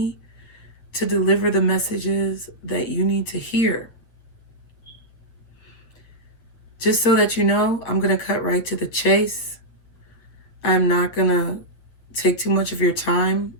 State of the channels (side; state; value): right; late; 8.6 ms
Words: to deliver the messages that you need to hear. Just so that you know, I'm going to cut right to the chase. I'm not going to take too much of your time